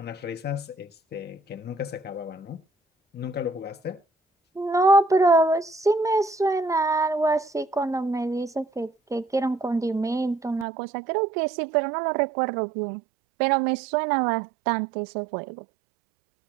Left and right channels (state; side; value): drops out; left; at 10.7 s